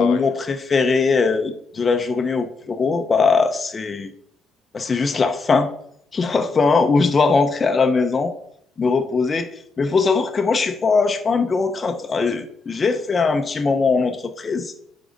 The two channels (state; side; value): quieter; right; 4.1 dB